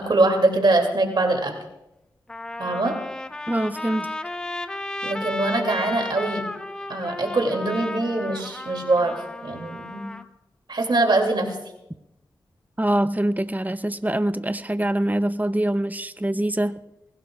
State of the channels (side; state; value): both; normal; correlation 0.78